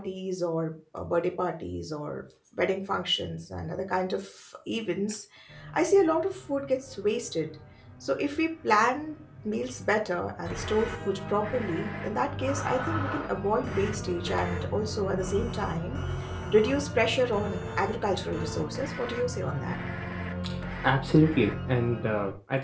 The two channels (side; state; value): both; identical; correlation 1.00